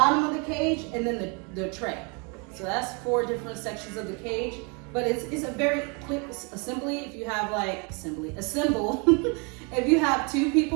of the cage, and then the tray. So that's 4 different sections of the cage. But it's a very quick assembly if you have assemble if you have 2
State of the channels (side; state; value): left; quieter; 33.1 dB